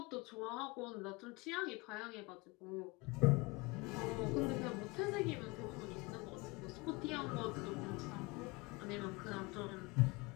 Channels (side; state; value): right; quieter; 25.5 dB